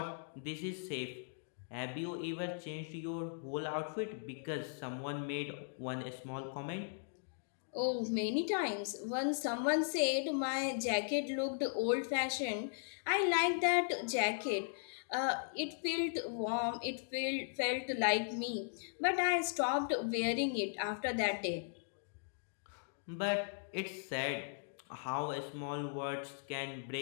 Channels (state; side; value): silent; right; digital silence